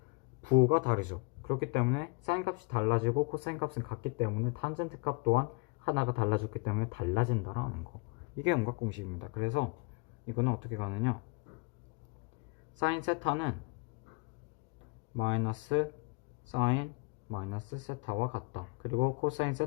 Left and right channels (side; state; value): right; quieter; 29.8 dB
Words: 부호가 다르죠. 그렇기 때문에 사인 값이 달라지고 코사인 값은 같기 때문에 탄젠트 값 또한 하나가 달라졌기 때문에 달라진다라는 거. 이게 음각 공식입니다. 그래서 이거는 어떻게 가느냐? 사인 세타는 마이너스 사인 마이너스 세타와 같다. 그리고 코사인